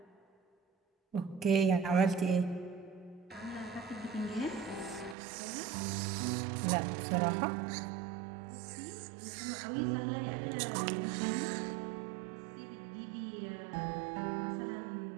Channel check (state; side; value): drops out; left; at 5.2 s